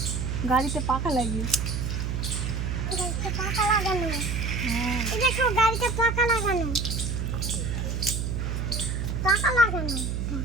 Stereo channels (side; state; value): right; noise; hum, 1 dB below the sound